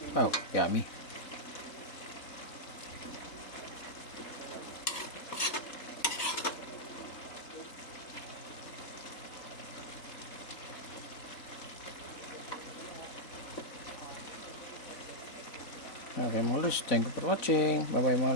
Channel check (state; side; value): late; right; 4.0 ms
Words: Oh, yummy. Okay mga lods, thank you for watching. Bye bye